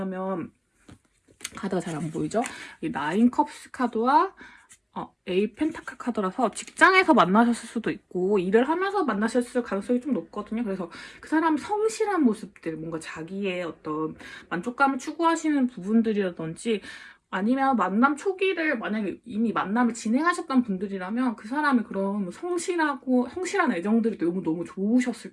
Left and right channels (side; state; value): both; identical; correlation 1.00